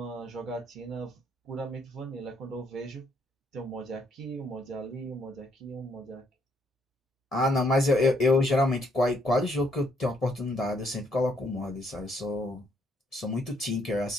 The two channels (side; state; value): both; normal; correlation 0.71